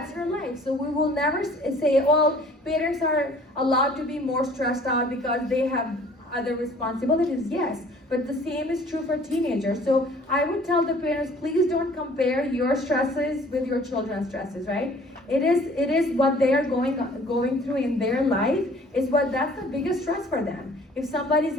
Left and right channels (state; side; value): normal; both; correlation 0.53